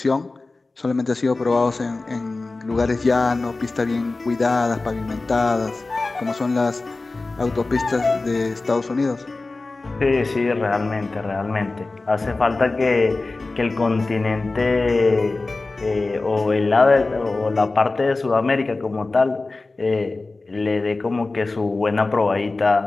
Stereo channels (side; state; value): right; quieter; 3.4 dB